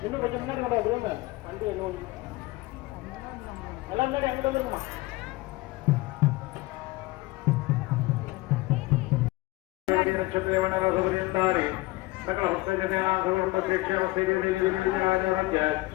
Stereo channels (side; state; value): right; quieter; 20.7 dB